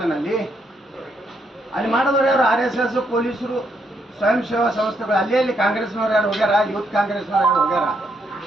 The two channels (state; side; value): normal; both; correlation 0.76